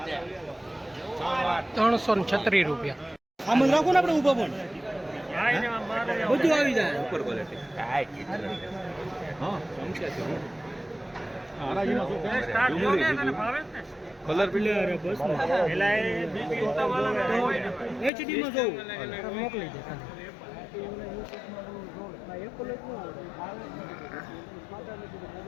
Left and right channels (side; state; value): right; drops out; at 18.1 s